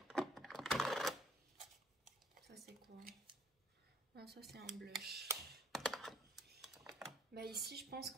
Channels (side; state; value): both; normal; correlation 0.62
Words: Ça c'est quoi? Ah, ça c'est un blush. Bah ici je pense